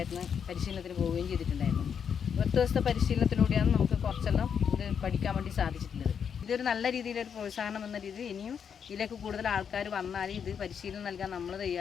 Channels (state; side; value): quieter; right; 7.3 dB